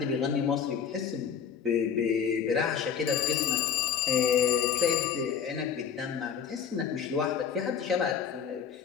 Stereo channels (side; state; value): right; quieter; 7.4 dB